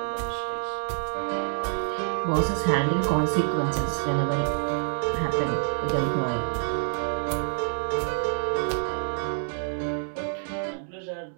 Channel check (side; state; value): left; silent; digital silence